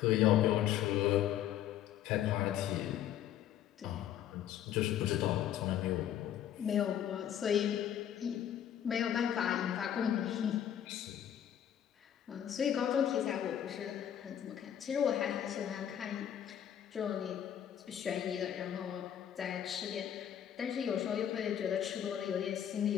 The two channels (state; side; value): quieter; right; 10.3 dB